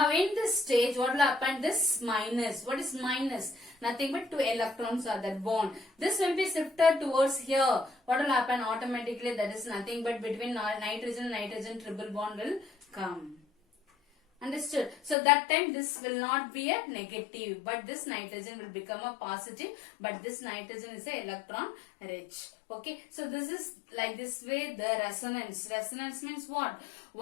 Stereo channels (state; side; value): drops out; right; at 15.2 s